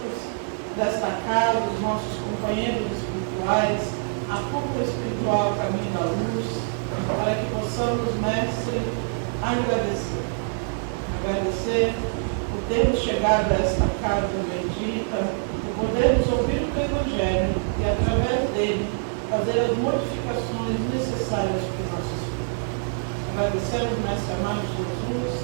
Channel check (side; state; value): left; silent; 62 dB below the other